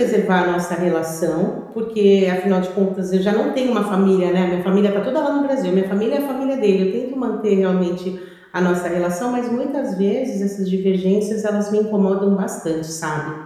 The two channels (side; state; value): both; identical; correlation 1.00